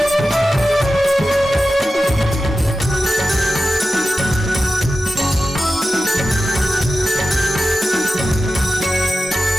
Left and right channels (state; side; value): normal; both; correlation 0.93